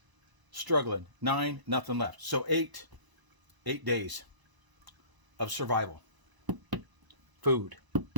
struggling. 9, nothing left. So 8 days of survival. Food. I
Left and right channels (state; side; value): late; left; 1.0 ms